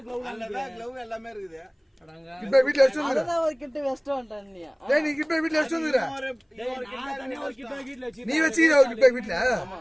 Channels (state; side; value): identical; both; correlation 1.00